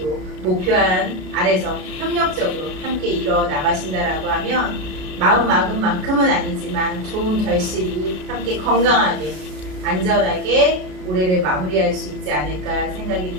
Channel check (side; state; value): left; late; 33 ms